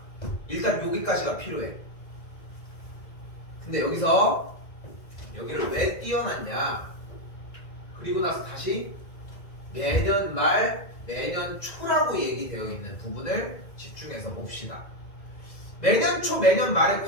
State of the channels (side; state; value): right; late; 2.0 ms